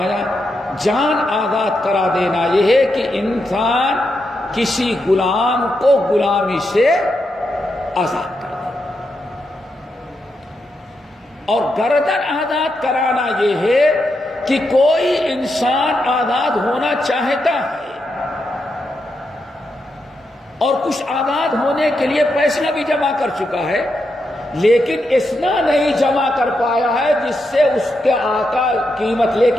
جان آزاد کرا دینا یہ ہے کہ انسان کسی غلام کو غلامی سے آزاد کر دے، اور گردن آزاد کرانا یہ ہے کہ کوئی انسان آزاد ہونا چاہتا ہے اور کچھ آزاد ہونے کے لیے پیسہ بھی جمع کر چکا ہے، لیکن اتنا نہیں جمع کر پایا ہے جس سے اس کے آقا قیمت لے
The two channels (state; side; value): normal; both; correlation 0.84